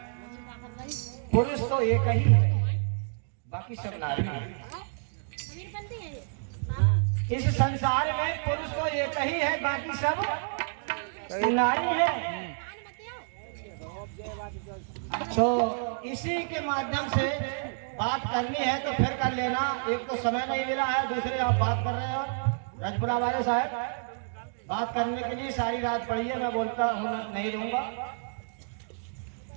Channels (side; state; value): left; silent; digital silence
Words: पुरुष तो एक ही है, बाकी सब नारी है। इस संसार में पुरुष तो एक ही है, बाकी सब नारी है। तो इसी के माध्यम से बात करनी है तो फिर कर लेना। एक तो समय नहीं मिला है, दूसरे आप बात कर रहे हो रजपुरा वाले साहब, बात करने के लिए सारी रात पड़ी है, मैं बोलता हूँ नहीं रहूंगा।